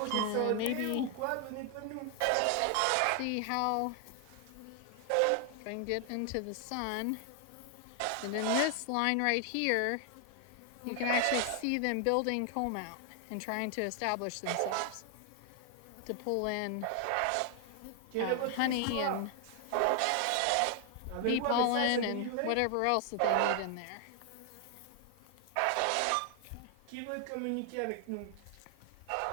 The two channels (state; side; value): different; both; correlation 0.00